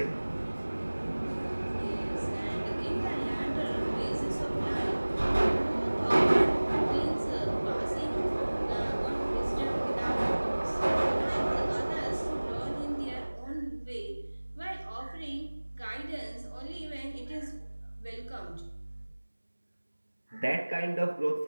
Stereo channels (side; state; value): both; inverted; correlation -1.00